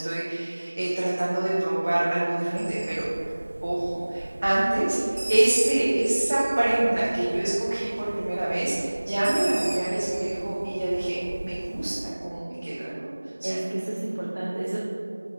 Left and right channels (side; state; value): both; inverted; correlation -1.00